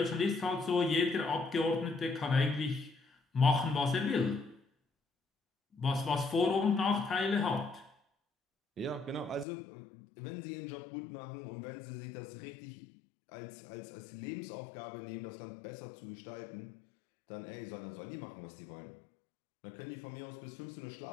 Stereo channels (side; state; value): right; drops out; at 9.5 s